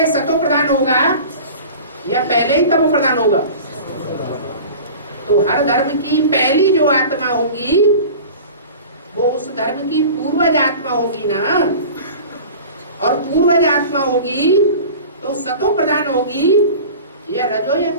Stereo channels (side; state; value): both; inverted; correlation -0.38